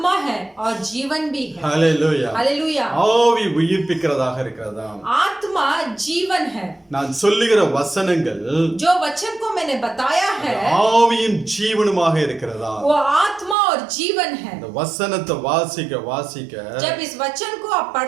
है और जीवन भी है। ஹalleluya. हालेलुया। ஆவி உயிர்ப்பிக்கிறதாக இருக்கிறதா. आत्मा जीवन है। நான் சொல்லுகிற வசனங்கள் जो वचन को मैंने बताया है ஆவியும் ஜீவனுமாக இருக்கிறதா. वो आत्मा और जीवन है। இந்த வசனத்தை வாசிக்க வாசிக்க जब इस वचन को आप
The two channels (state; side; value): drops out; left; at 13.6 s